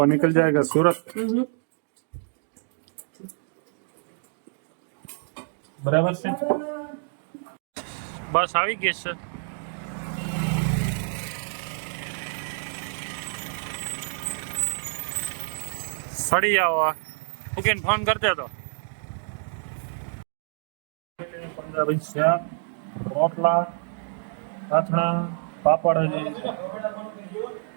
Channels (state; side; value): silent; left; 60 dB below the other